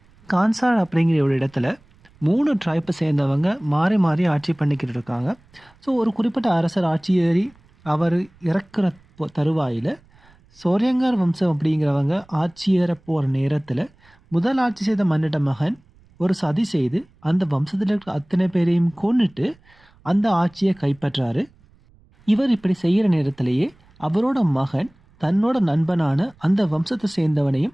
கான்சார் அப்படிங்கிற ஒரு இடத்துல 3 ட்ரைப்பை சேர்ந்தவங்க மாறி மாறி ஆட்சி பண்ணிக்கிட்டு இருக்காங்க. ஸோ ஒரு குறிப்பிட்ட அரசர் ஆட்சி ஏறி அவர் இறக்குற தருவாயில் சோரியங்கார் வம்சம் அப்படிங்கிறவங்க ஆட்சி ஏற போகிற நேரத்தில் முதல் ஆட்சி செய்த மன்னிட்ட மகன் ஒரு சதி செய்து அந்த வம்சத்தில் இருக்கிற அத்தனை பேரையும் கொன்னுட்டு அந்த ஆட்சியை கைப்பற்றாரு. இவர் இப்படி செய்கிற நேரத்திலேயே அவரோட மகன் தன்னோட நண்பனான அந்த வம்சத்தை சேர்ந்தவனையும்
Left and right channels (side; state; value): right; noise; rumble, 30 dB below the sound